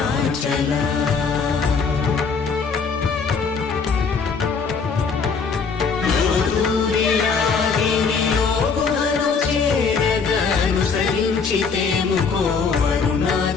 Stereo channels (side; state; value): right; quieter; 5.3 dB